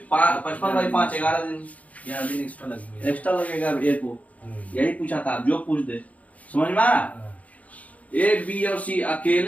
55 बाई 5 11 दिन एक्स्ट्रा लगेगा ए को। यही पूछा था, जो पूछ दे, समझ में आ रहा। ए बी और सी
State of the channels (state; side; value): late; right; 0.070 ms